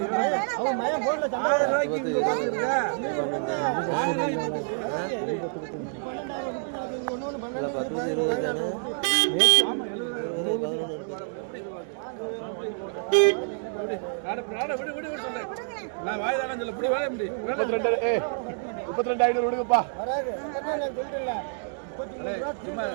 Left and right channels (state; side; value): silent; left; digital silence